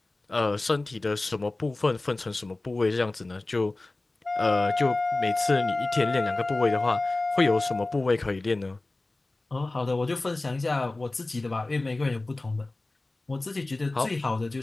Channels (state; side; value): quieter; right; 3.0 dB